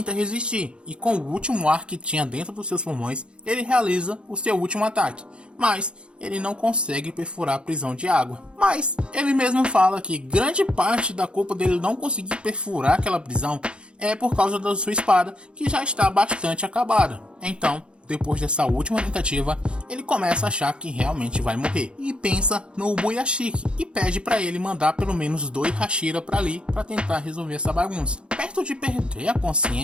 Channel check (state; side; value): late; left; 0.056 ms